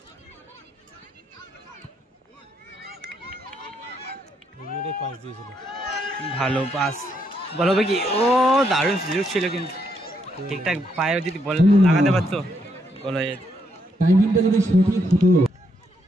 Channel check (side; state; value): both; normal; correlation 0.76